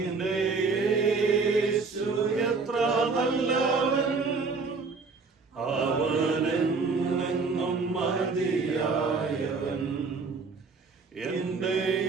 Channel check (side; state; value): left; quieter; 4.4 dB